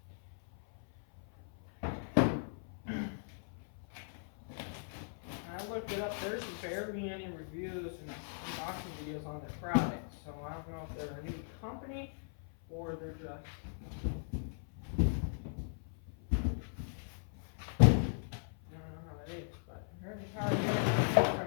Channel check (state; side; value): silent; right; 52 dB below the other